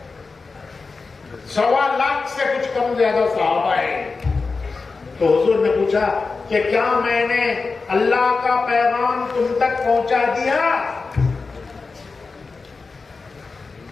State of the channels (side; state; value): right; quieter; 4.3 dB